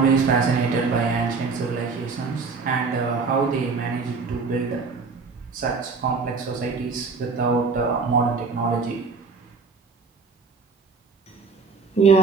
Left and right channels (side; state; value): left; quieter; 4.6 dB